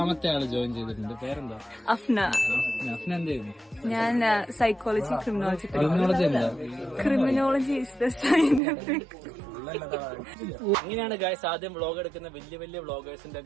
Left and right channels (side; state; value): left; drops out; at 8.6 s